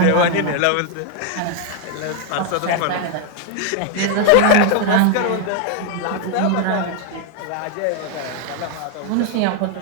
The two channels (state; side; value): different; both; correlation 0.01